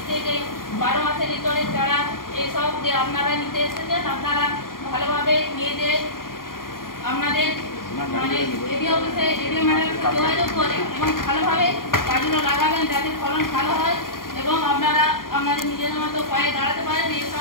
থেকে 12 মাসের ইতরের চারা, এসব যে আপনারা নিতে এসেছেন আপনারা ভালোভাবে নিয়ে যে আপনাদের মানে এডি অফিসে এডি ম্যাডামের সাথে যোগাযোগ করে এবং ভালোভাবে গাছগুলো লাগাবেন যাতে ফলন ভালো হয় এবং আপনারা আপনাদের নিজেদের মতো পায়ে দাঁড়াতে পারেন।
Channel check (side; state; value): right; late; 0.91 ms